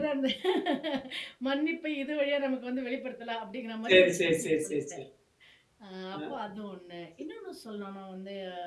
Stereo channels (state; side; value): identical; both; correlation 1.00